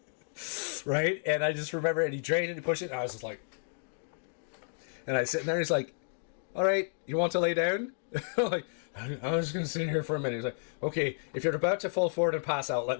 Right? And I just remember, and he drained it, and he pushed it, and I was just like... And I sit there, and he's like, all right, you want to lay down? I'm like, I was going to sit here for a minute. He's like, okay, if you're about to fall forward and pass out, let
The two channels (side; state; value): right; silent; digital silence